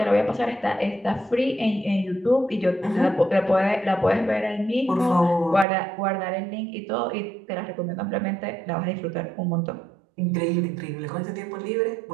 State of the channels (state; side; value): drops out; left; at 5.7 s